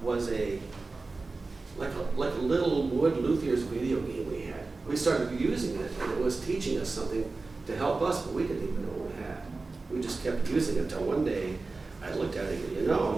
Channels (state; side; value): quieter; left; 3.7 dB